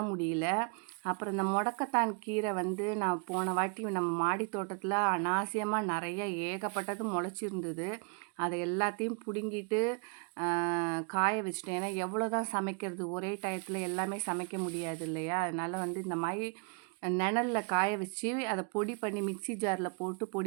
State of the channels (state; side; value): quieter; left; 39.1 dB